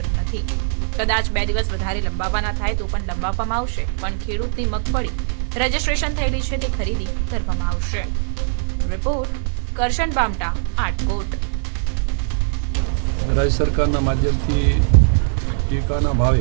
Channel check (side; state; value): left; silent; digital silence